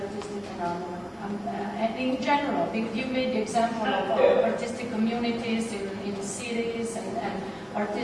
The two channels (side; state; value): both; identical; correlation 1.00